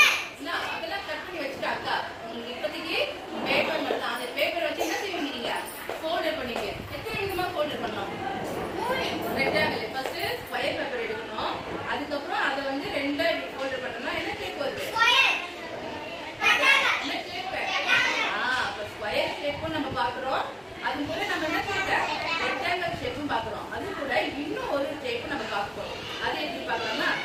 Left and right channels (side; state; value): both; identical; correlation 1.00